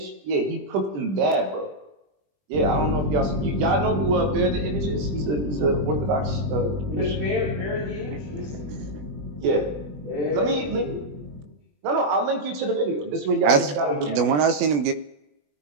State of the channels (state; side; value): late; left; 20 ms